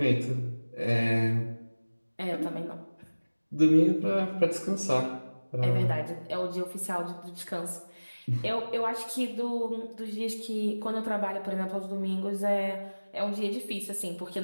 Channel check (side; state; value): both; inverted; correlation -1.00